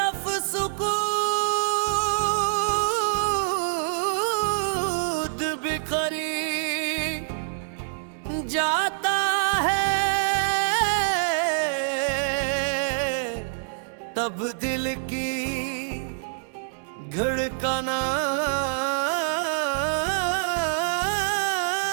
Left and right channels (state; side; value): silent; left; digital silence